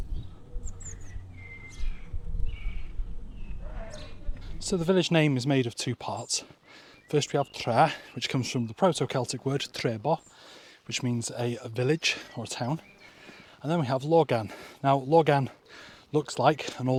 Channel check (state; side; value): identical; both; correlation 1.00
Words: So the village name is made of two parts. First we have Tre, which comes from the Proto-Celtic word Trebo, which means a village or a town. And then we have Logan. Now Logan looks like an